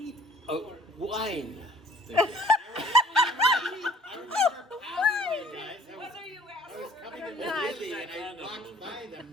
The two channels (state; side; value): normal; both; correlation 0.54